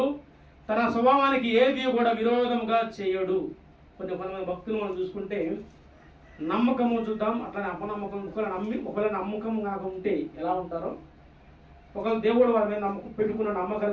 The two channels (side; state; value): both; identical; correlation 1.00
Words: తన స్వభావానికి ఏది కూడా విరోధముగా చేయడు. కొంతమంది భక్తులు మనం చూసుకుంటే నమ్మకము చూద్దాం, అట్లానే అపనమ్మకం. ఒకవేళ నమ్మకం కాక ఉంటే ఎలా ఉంటారో, ఒకవేళ దేవుడు వారి మీద నమ్మకం పెట్టుకున్న